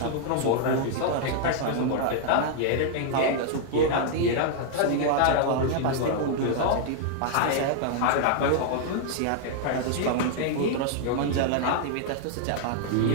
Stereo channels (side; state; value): both; different; correlation -0.01